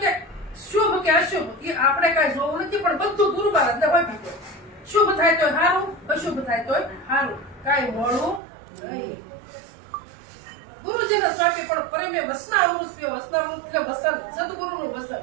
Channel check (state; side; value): drops out; left; at 8.4 s